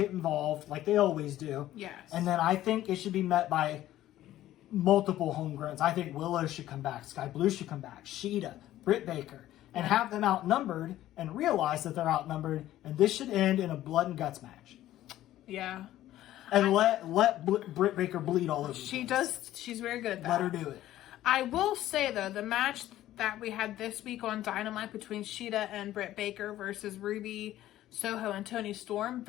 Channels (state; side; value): quieter; right; 13.9 dB